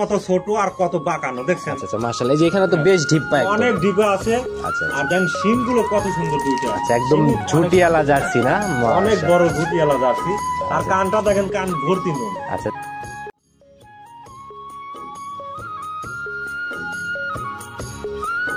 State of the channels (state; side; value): identical; both; correlation 1.00